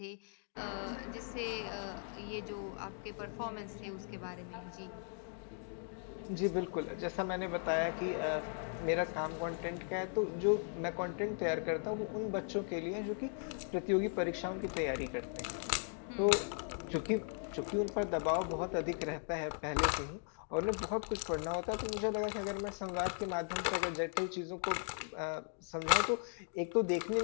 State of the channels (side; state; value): right; silent; 52 dB below the other